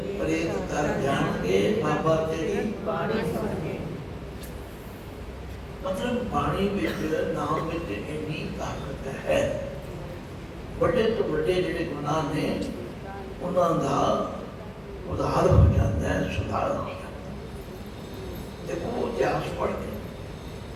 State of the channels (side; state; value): both; identical; correlation 1.00